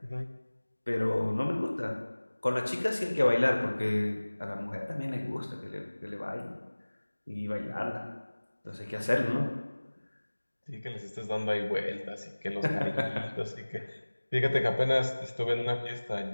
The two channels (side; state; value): both; inverted; correlation -1.00